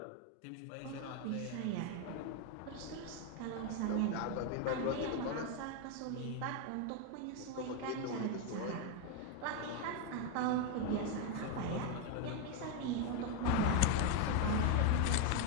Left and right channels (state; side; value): different; both; correlation 0.01